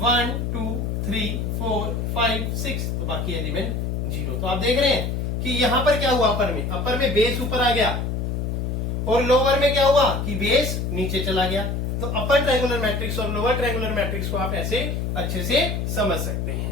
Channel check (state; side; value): noise; left; hum, 1 dB below the sound